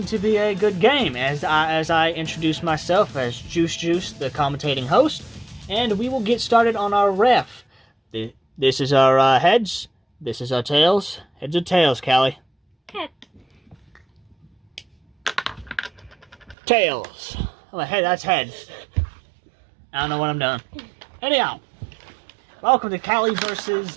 to be a good game, as I introduce myself as Juice, the commentating host, and we will get started on our ref. This is our heads. This is our tails. Heads or tails, Callie? Head. Tails. Oh, hey, that's heads. I don't know what I'm doing. Anyhow, welcome to Callie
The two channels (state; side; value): drops out; left; at 16.6 s